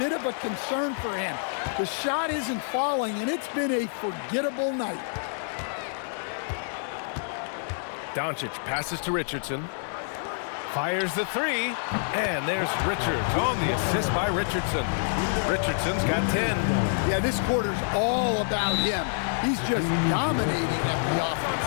of a concern for him. The shot isn't falling, and it's been a forgettable night. Doncic passes to Richardson. Fires the 3, and there's Richards on the assist by Richardson. Richardson's got 10. Yeah, this quarter's all about him. He's just dominating at the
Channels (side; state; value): right; silent; digital silence